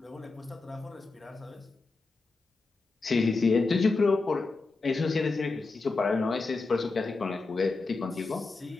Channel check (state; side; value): quieter; right; 3.8 dB